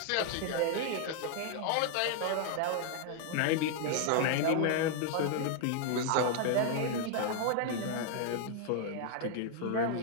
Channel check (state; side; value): different; both; correlation 0.00